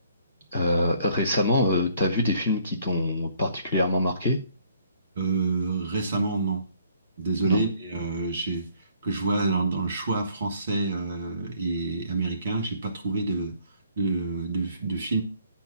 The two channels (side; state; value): both; inverted; correlation -0.62